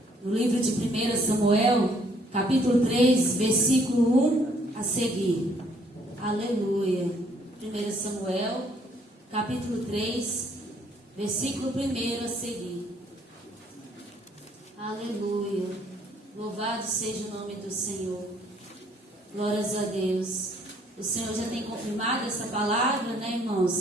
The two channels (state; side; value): normal; both; correlation 0.64